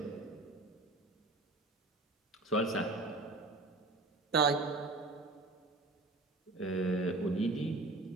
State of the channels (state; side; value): quieter; left; 3.1 dB